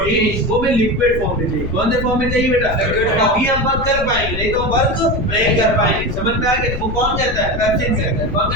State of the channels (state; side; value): noise; left; rumble, 9 dB below the sound